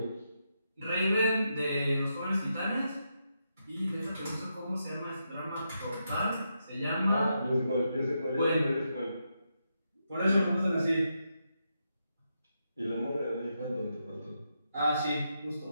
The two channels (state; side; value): inverted; both; correlation -0.83